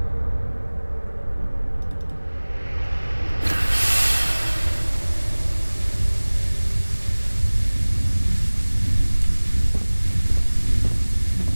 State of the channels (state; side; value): inverted; both; correlation -1.00